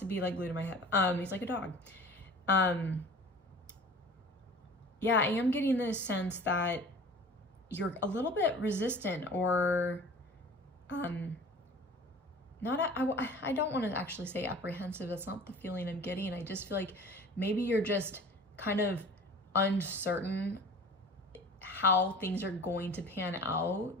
be like glued to my hip. He's like a dog. Yeah, I am getting this sense that you're a little bit resistant or, I don't want to actually say apprehensive. That's not the feeling I'm getting. I just feel like maybe you're just kind of uncertain how things are going to pan out.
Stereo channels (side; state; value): both; normal; correlation 0.42